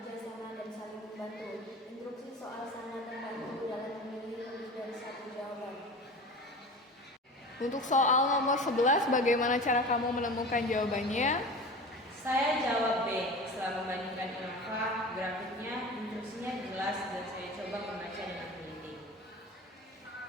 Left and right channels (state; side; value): normal; both; correlation 0.34